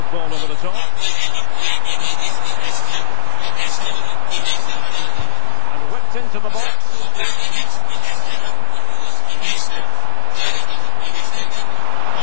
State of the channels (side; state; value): both; different; correlation 0.00